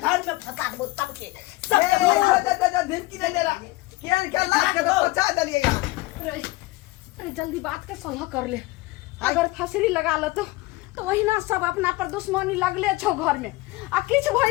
घर में फंसा दो सबके सबके धमकी दे दे रहा केन के लाख के तो पचा दलिए यहां अरे जल्दी बात के सलाह कर ले अगर फसरी लगा ल तो वही ना सब अपना पर दुश्मनी लगले छौ घर में आ किछ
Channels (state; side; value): quieter; right; 20.8 dB